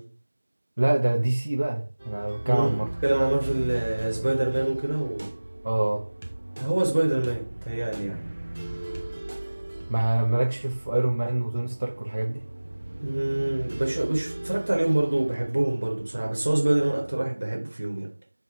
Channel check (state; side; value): inverted; both; correlation -1.00